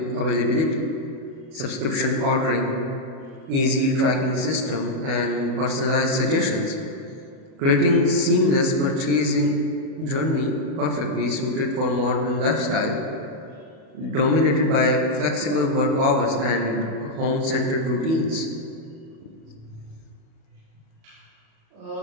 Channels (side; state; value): left; late; 37 ms